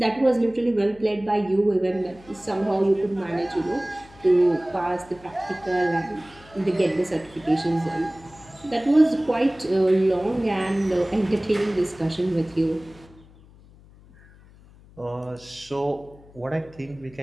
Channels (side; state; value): left; noise; hum, 24 dB below the sound